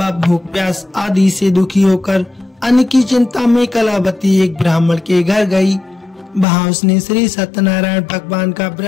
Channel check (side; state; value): right; drops out; at 6.5 s